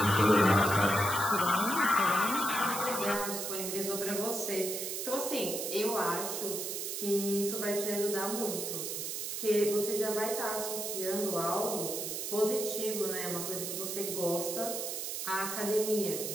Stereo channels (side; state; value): right; noise; hiss, 4 dB below the sound